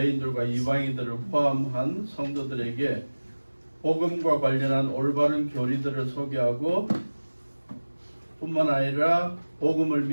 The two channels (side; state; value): both; inverted; correlation -1.00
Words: 이방인들을 포함한 성도들에게 복음과 관련한 올바른 교리들을 소개하고 뿐만 아니라 복음을